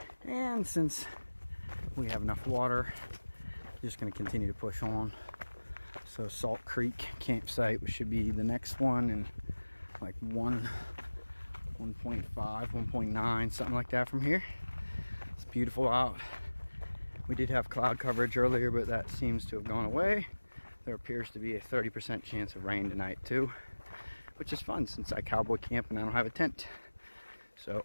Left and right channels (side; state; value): both; inverted; correlation -1.00